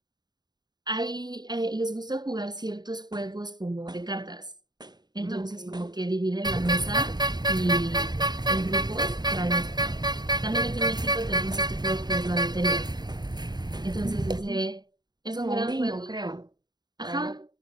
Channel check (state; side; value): late; left; 0.20 ms